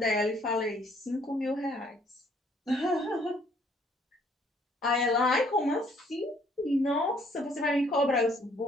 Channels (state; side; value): normal; both; correlation 0.63